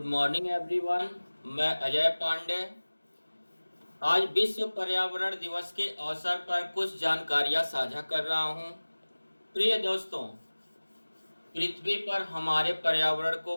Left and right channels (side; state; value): both; inverted; correlation -1.00